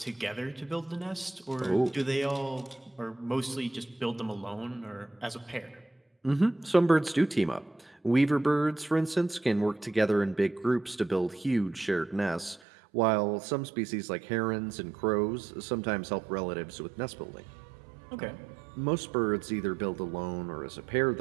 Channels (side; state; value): left; drops out; at 12.6 s